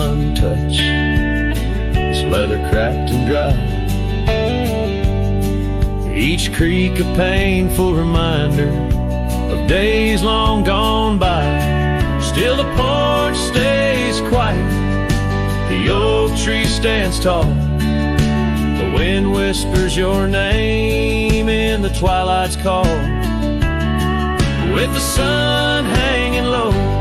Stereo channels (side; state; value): both; identical; correlation 1.00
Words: its leather cracked and dry, each creak a painful reminder of days long gone by. Still the porch stays quiet, the oak tree stands tall, the wind whispers your name in the twilight's call. With the sun hanging low